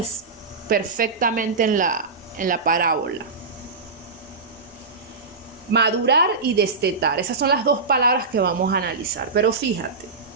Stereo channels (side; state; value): left; quieter; 4.2 dB